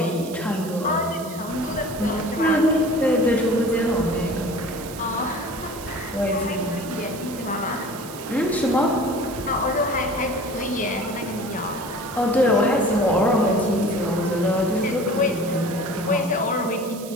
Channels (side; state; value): right; noise; hiss, 15 dB below the sound